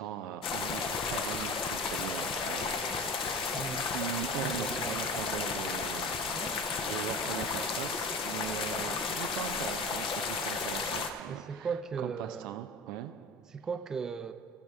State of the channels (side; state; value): both; normal; correlation 0.34